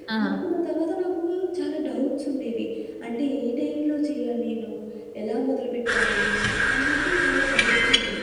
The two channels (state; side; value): identical; both; correlation 1.00